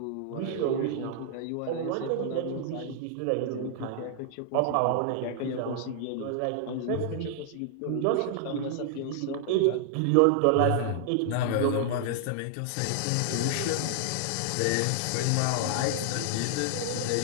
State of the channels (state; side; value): different; both; correlation -0.01